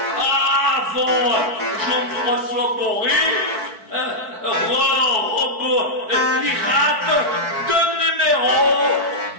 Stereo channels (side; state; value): left; late; 4.5 ms